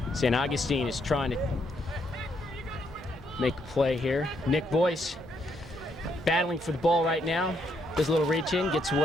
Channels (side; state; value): both; normal; correlation 0.74